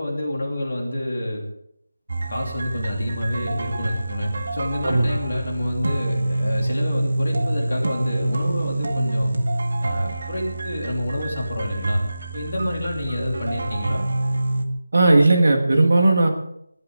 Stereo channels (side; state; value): both; inverted; correlation -0.93